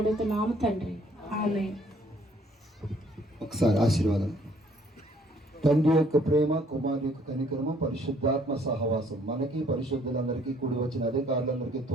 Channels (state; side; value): normal; both; correlation 0.62